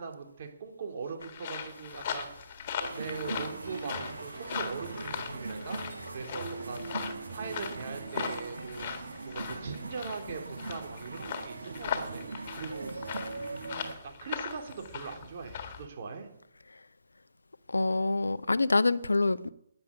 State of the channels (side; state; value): both; inverted; correlation -0.84